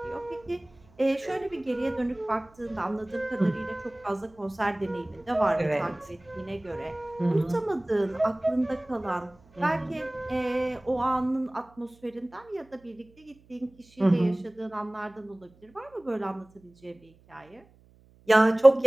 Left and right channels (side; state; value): right; noise; hum, 29 dB below the sound